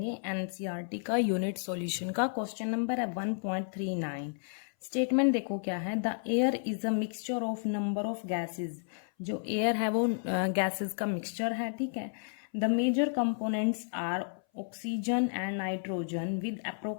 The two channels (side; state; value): right; silent; 56 dB below the other